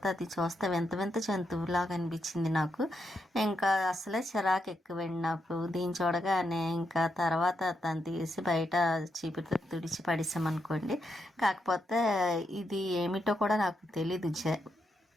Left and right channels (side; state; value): both; normal; correlation 0.82